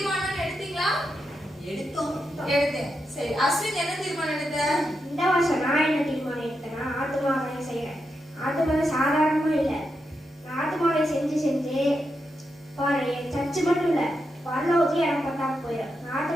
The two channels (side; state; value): both; normal; correlation 0.85